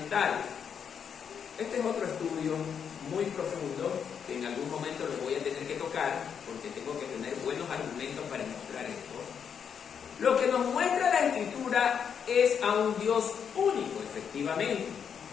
Este es otro estudio muy profundo, que en algún momento lo voy a tener que tocar, porque tengo que tener buenos argumentos para demostrar esto. Lo que nos muestra la Escritura es a un Dios único, efectivamente.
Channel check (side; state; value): right; quieter; 7.4 dB